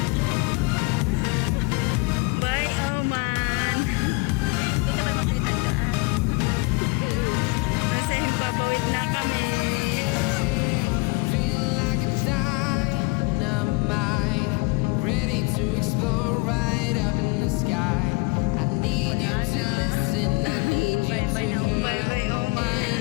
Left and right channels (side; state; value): right; quieter; 26.0 dB